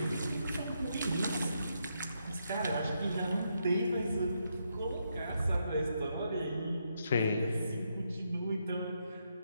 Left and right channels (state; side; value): inverted; both; correlation -0.80